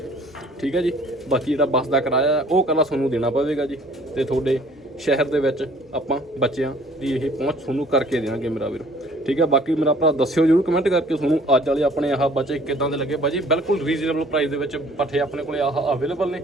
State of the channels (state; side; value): normal; both; correlation 0.54